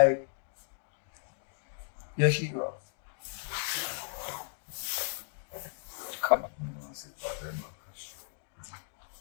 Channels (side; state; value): right; silent; digital silence